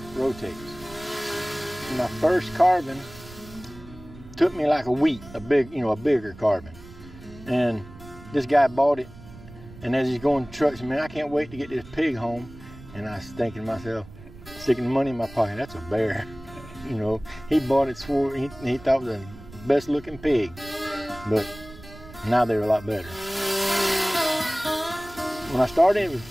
rotates. My first carbon took me like a week, a bigger carbon. And this guy bought it, and as he's going to trucks, man, I can't wait to get this pig home. And I was thinking to myself, sticking the money in my pocket, that's a bear. You know, he bought it, swore he thought it was the best looking pig. But now they're a lot better. When I started, it was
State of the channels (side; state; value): right; noise; rumble, 18 dB below the sound